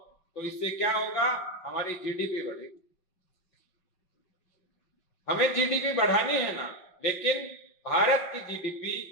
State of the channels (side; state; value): right; late; 5.5 ms